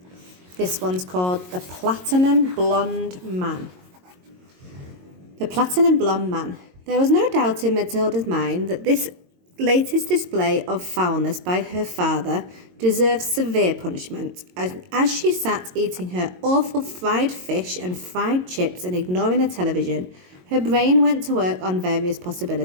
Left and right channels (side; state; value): left; late; 22 ms